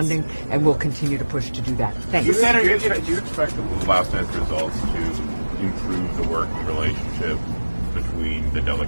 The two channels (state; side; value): inverted; both; correlation -1.00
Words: and will continue to push to do that. Thanks. Do you expect the last night's results to improve the working relationship between the